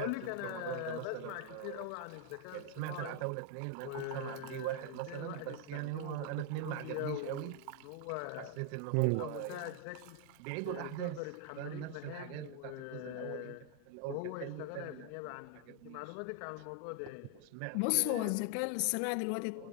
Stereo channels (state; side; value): different; both; correlation 0.00